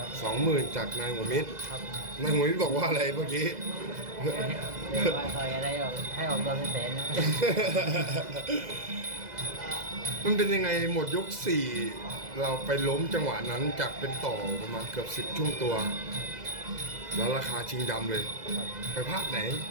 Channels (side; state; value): left; late; 2.0 ms